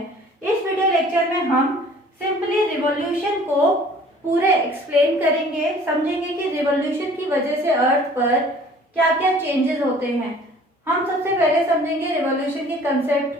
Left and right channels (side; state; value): both; normal; correlation 0.51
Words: इस वीडियो लेक्चर में हम सिंपली रिवॉल्यूशन को पूरे एक्सप्लेन करेंगे, समझेंगे कि रिवॉल्यूशन की वजह से अर्थ पर क्या क्या चेंजेस होते हैं। हम सबसे पहले समझेंगे रिवॉल्यूशन के कंसेप्ट